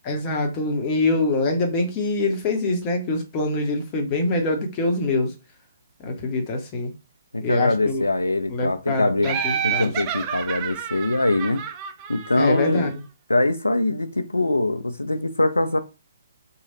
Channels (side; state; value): both; inverted; correlation -0.72